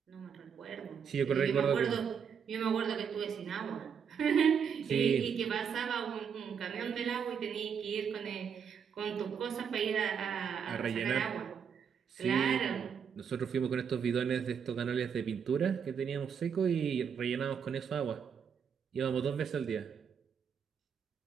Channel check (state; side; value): quieter; left; 7.1 dB